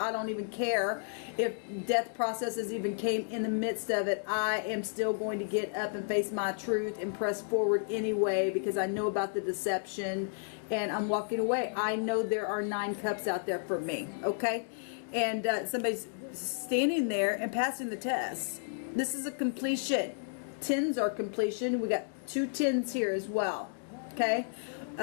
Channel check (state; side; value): silent; right; digital silence